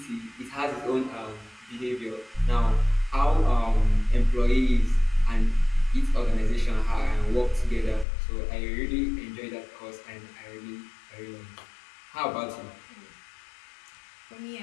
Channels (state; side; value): drops out; right; at 8.1 s